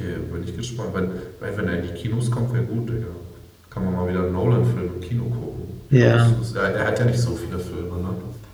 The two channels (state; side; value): identical; both; correlation 1.00